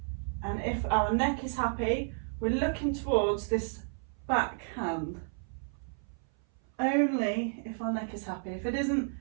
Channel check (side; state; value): left; silent; 56 dB below the other